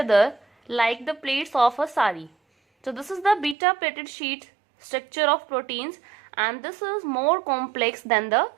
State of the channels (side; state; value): left; drops out; at 3.6 s